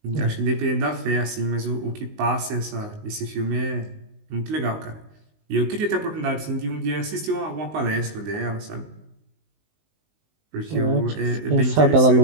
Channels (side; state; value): left; late; 19 ms